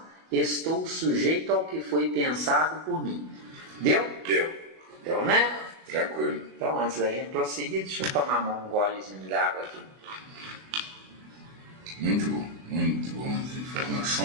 estou sujeito ao que foi pensado por mim. Deu? Deu, né? Tranquilo. Então, antes da gente prosseguir, deixa eu tomar um golezinho de água aqui. Muito bom as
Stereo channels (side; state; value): left; late; 24 ms